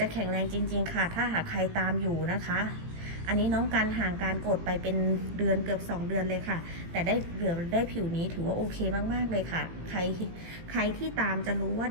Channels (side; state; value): left; late; 18 ms